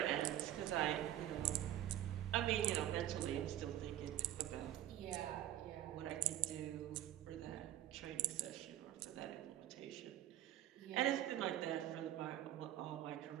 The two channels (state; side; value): quieter; left; 12.7 dB